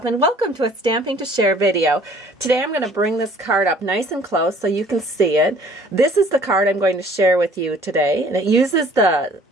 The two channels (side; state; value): both; normal; correlation 0.55